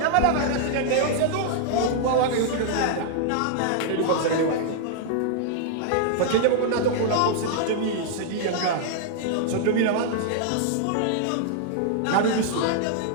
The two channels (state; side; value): different; both; correlation -0.01